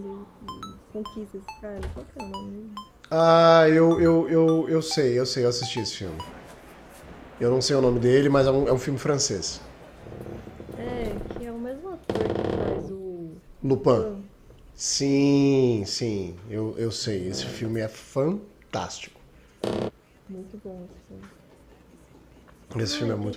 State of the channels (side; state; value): both; identical; correlation 1.00